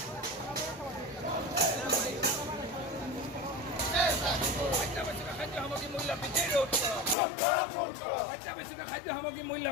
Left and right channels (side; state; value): right; drops out; at 7.2 s